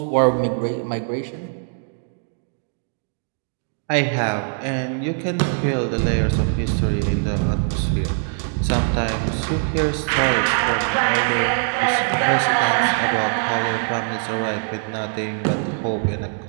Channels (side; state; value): left; silent; 60 dB below the other